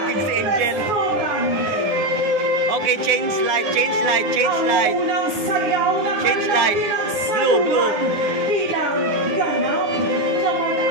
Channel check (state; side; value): late; left; 9.7 ms